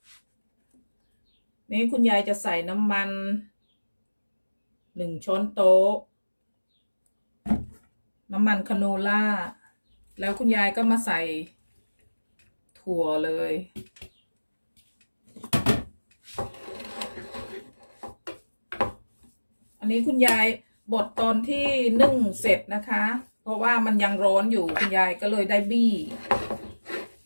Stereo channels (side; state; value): both; inverted; correlation -1.00